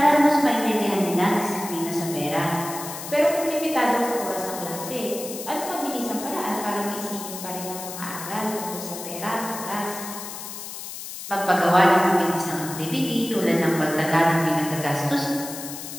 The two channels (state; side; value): noise; left; hiss, 10 dB below the sound